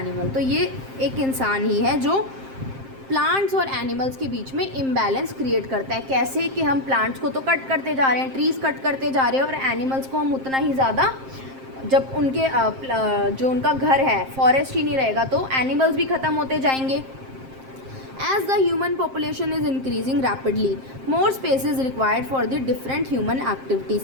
तो ये एक इंसान ही है जो प्लांट्स और एनिमल्स के बीच में इम्बैलेंस क्रिएट करता है। कैसे कि हम प्लांट्स को तो कट करते जा रहे हैं, ट्रीज़ कट करते जा रहे हैं, और एनिमल्स को हम उतना ही ज़्यादा, जब उनके जो उनका घर है फॉरेस्ट ही नहीं रहेगा तो एनिमल्स भी ख़त्म होते जाएंगे। As the human population is increasing rapidly, more space is required for the different human activities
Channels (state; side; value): late; left; 7.6 ms